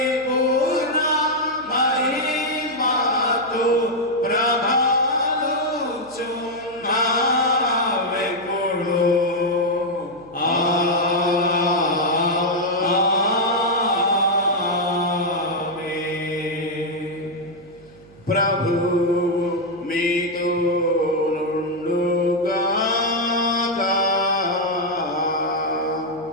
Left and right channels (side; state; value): right; noise; hum, 25 dB below the sound